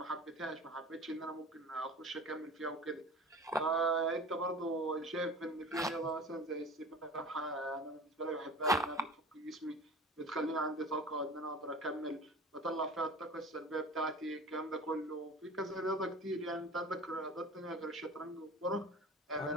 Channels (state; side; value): normal; both; correlation 0.38